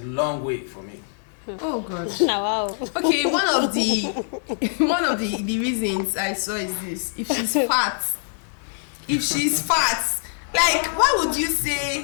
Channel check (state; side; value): silent; right; 63 dB below the other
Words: way for me. Oh God. Now, wow. Okay, one of the reasons I saw is this: if she's fat, like why would you